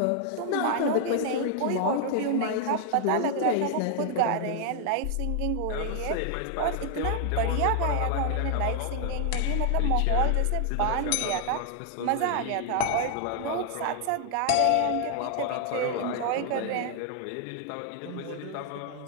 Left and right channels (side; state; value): both; different; correlation 0.00